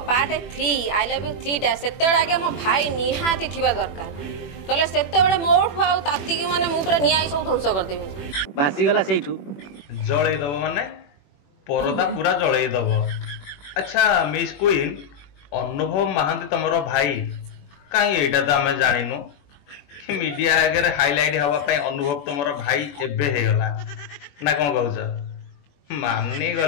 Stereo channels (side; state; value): right; late; 21 ms